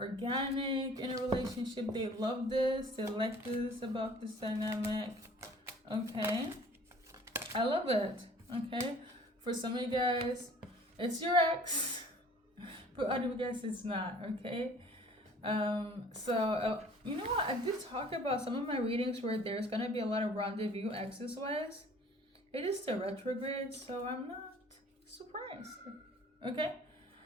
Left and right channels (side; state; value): both; normal; correlation 0.51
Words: in a relationship. They love this. They like this about this dynamic. Okay. I love it. Okay. For some of you guys, it's your ex. For other of you guys, it's not. Okay. You know what? I did talk about some of my readings where there's going to be a lot of rendezvous exes-wise. It is the retrograde, so I'm not surprised. Okay?